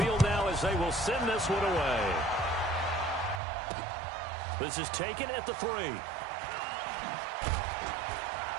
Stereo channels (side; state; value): left; drops out; at 3.4 s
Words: now as they will send this one away. This is taken at the 3.